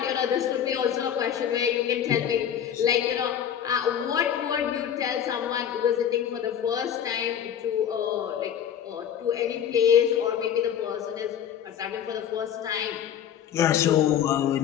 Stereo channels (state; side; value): quieter; right; 9.2 dB